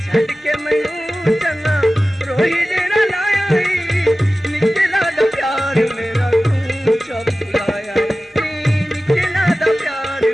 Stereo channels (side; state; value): both; normal; correlation 0.96